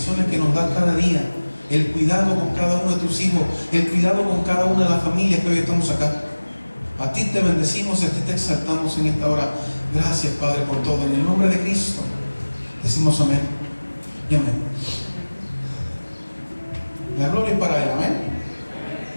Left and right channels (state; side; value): inverted; both; correlation -1.00